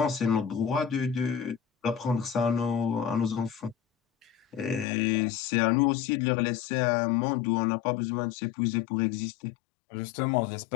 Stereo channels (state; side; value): drops out; right; at 4.9 s